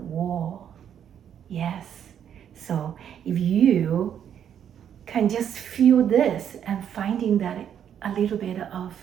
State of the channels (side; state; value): left; quieter; 9.1 dB